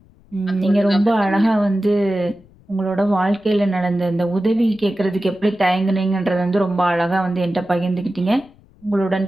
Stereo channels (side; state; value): left; noise; rumble, 28 dB below the sound